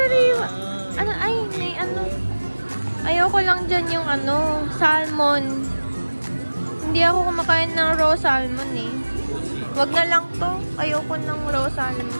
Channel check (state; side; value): inverted; both; correlation -1.00